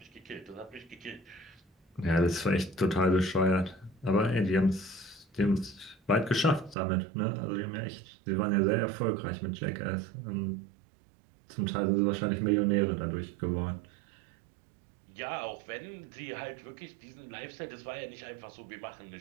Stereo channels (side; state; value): left; drops out; at 6.8 s